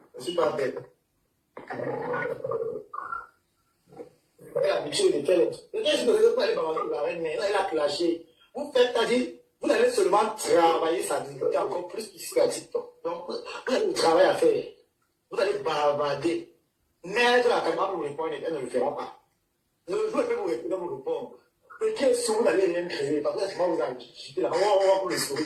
ne suis pas bête. Elle a habitué de faire les trucs. Qu'est-ce que vous allez balancer la reine? Elle a clashé. Vous faites, c'est-à-dire, vous allez seulement travailler sa dignité encore plus ici à TikTok. Donc, vous avez du travail à faire. Vous allez bavarder. Mettre la caméra pour vous répondre, elle ne le fera pas. Je vais vous répondre. Le pied sur vous n'allez rien créer, parce que sinon vous agitez là, on va pour les souris.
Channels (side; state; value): both; identical; correlation 1.00